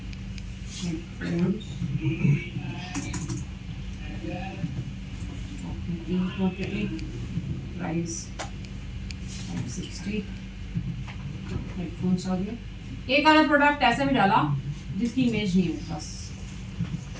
हेडफोन्स 3 क्वांटिटी, प्राइस 560। हेडफोन्स आ गए। एक आधा प्रोडक्ट ऐसा भी डाला जिसकी इमेज नहीं है मेरे पास,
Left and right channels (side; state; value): both; identical; correlation 1.00